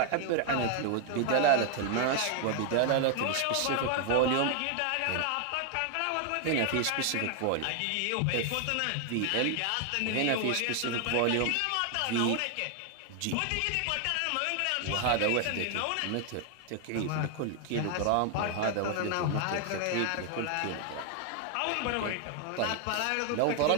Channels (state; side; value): different; both; correlation 0.00